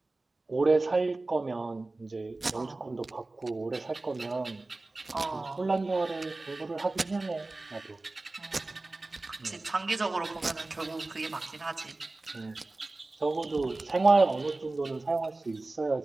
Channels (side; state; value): left; quieter; 3.1 dB